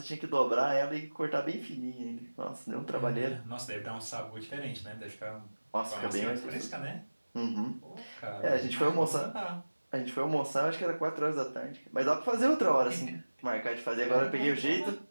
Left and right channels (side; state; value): both; inverted; correlation -1.00